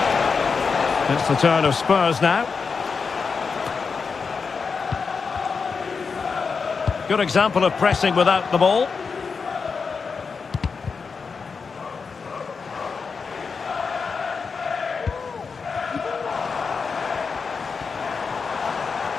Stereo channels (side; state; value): right; quieter; 5.2 dB